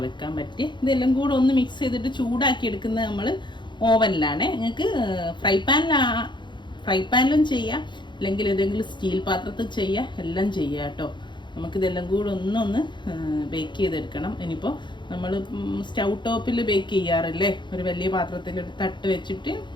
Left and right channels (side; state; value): right; late; 0.22 ms